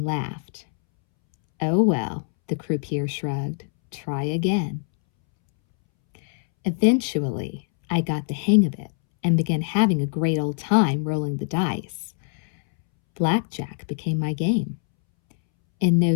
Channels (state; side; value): silent; right; 63 dB below the other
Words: laughed. "Oh well," the croupier shrugged. "Try again." Eventually, I got the hang of it and began having a great old time rolling the dice. Blackjack became my game. In